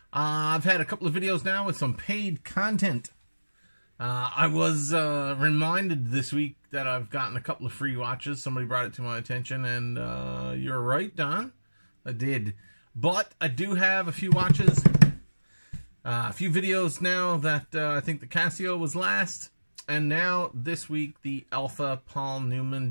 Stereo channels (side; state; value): both; inverted; correlation -1.00